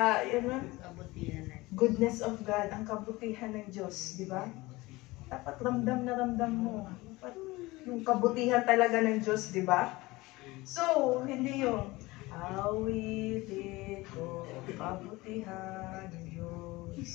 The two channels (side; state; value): right; quieter; 21.0 dB